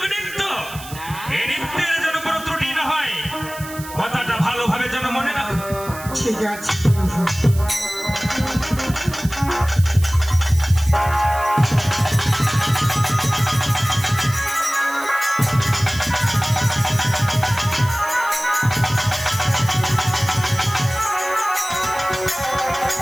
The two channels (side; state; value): right; noise; hiss, 15 dB below the sound